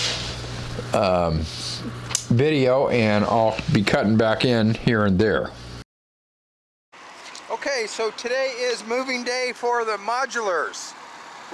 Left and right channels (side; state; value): both; identical; correlation 1.00